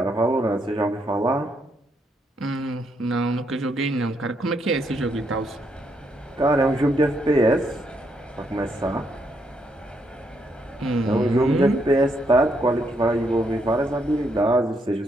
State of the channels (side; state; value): both; normal; correlation 0.76